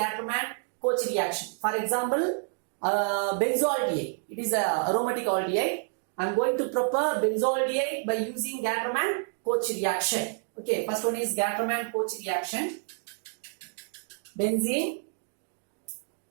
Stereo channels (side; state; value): left; silent; 57 dB below the other